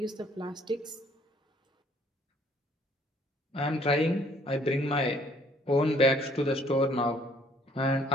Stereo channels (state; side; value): normal; both; correlation 0.61